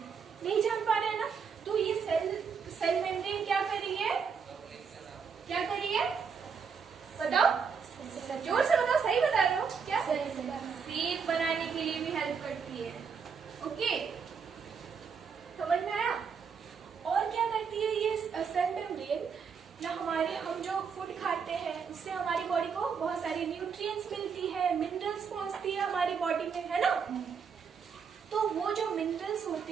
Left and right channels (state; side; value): quieter; left; 6.2 dB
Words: नहीं जान पा रहे हैं ना। तो ये सेल मेम्ब्रेन क्या कर रही है, क्या कर रही है, बताओ, जोर से बताओ, सही बता रहे हो क्या? शेप बनाने के लिए भी हेल्प करती है। ओके, समझ में आया? और क्या करती है ये सेल मेम्ब्रेन ना, हम जो फूड खाते हैं उससे हमारी बॉडी को बहुत सारी न्यूट्रिएंट्स मिलती है, मिनरल्स पहुंचती है हमारी बॉडी में, है ना। तो वो जो मिनरल्स